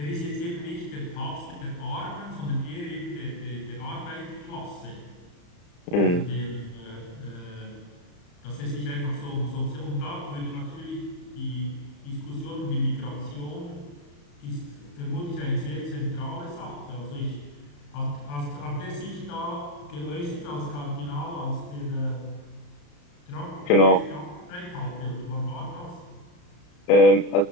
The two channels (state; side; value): late; right; 34 ms